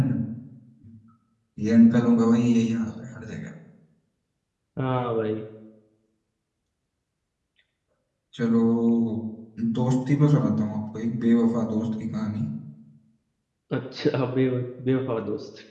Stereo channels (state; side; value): identical; both; correlation 1.00